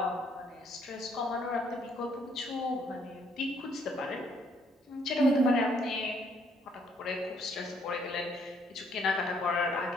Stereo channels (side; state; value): both; normal; correlation 0.68